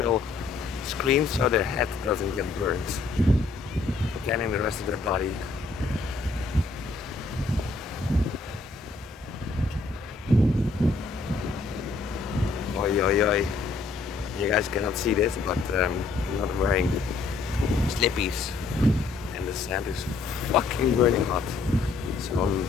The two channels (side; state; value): right; quieter; 4.0 dB